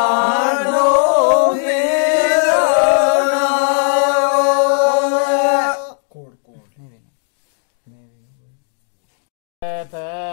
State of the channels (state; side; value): silent; right; digital silence